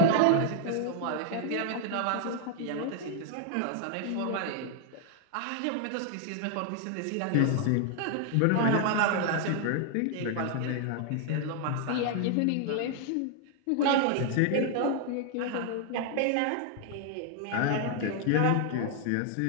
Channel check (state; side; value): different; both; correlation 0.00